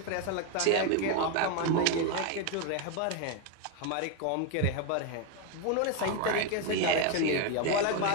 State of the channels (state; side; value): different; both; correlation 0.02